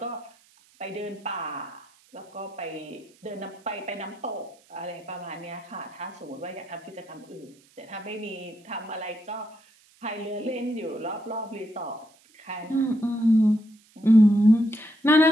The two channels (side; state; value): right; noise; hiss, 30 dB below the sound